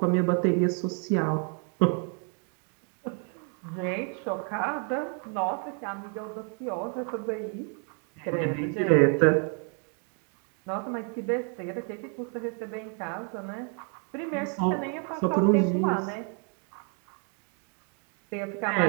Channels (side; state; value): left; quieter; 38.6 dB